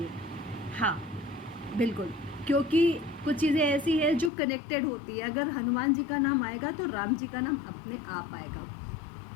हाँ बिल्कुल, क्योंकि कुछ चीज़ें ऐसी है जो कनेक्टेड होती है। अगर हनुमान जी का नाम आएगा तो राम जी का नाम अपने आप आएगा।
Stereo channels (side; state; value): right; drops out; at 4.3 s